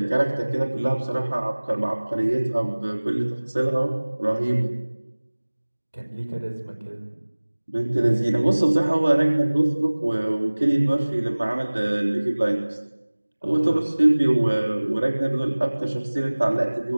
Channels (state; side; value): inverted; both; correlation -1.00